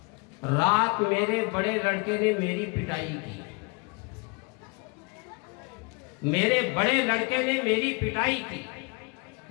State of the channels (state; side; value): quieter; right; 30.7 dB